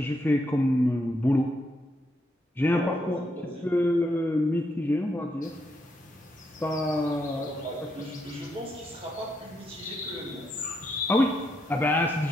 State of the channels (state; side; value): normal; both; correlation 0.79